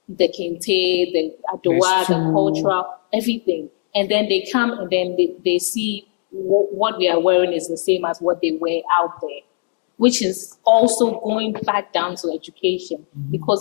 the kente, the adowa, the cultural, everything. And then they come and then they see what we are wearing is the same as what they wear out there, which is also going back down to education,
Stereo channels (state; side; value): silent; right; 66 dB below the other